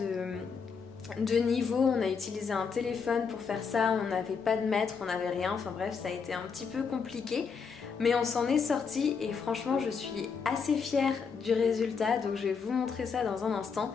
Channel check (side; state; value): right; quieter; 5.8 dB